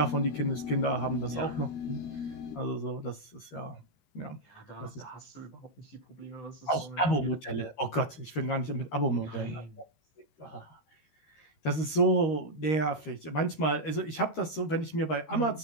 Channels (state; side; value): late; right; 13 ms